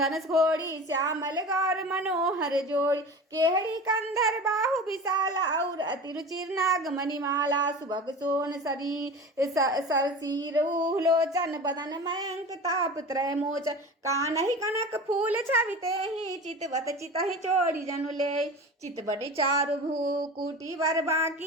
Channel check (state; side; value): normal; both; correlation 0.34